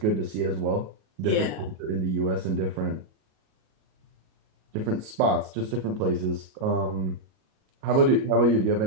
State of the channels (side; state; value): left; late; 38 ms